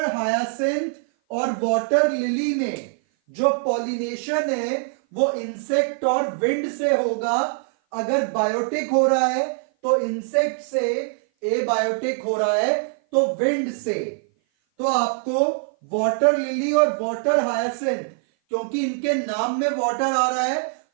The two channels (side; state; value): left; silent; 56 dB below the other